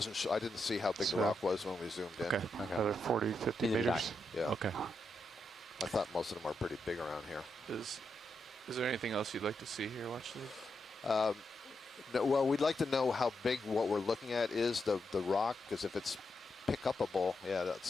sure. I didn't see how big the rock was when we zoomed in. Okay. Another 40, 50 Neither did I. meters. Yeah. Okay. I thought most of them are pretty big around here. Is there anything else you'd like to see here? Watch this. No, well, we'd like to know how big what we're looking at is, the rock, because if it's pick-upable, yeah,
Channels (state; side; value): normal; both; correlation 0.84